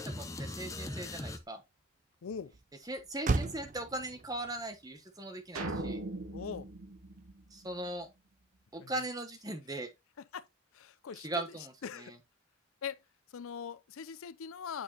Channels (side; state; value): both; normal; correlation 0.39